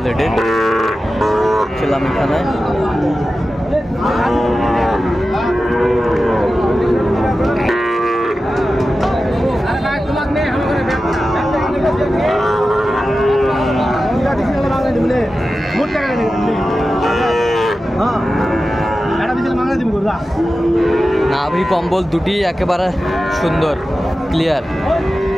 ছিলাম এখানে। নাভি কম্বল দুটি একেবারে সুন্দর, ক্লিয়ার।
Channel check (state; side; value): normal; both; correlation 0.93